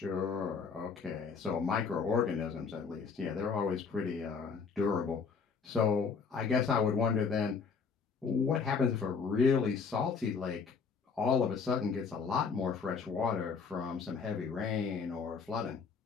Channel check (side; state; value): right; quieter; 5.5 dB